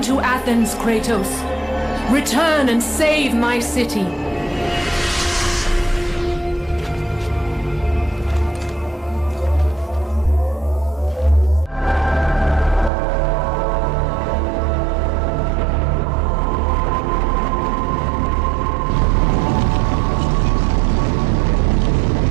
to Athens, Kratos. Return and save my city.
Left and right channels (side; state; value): left; drops out; at 12.9 s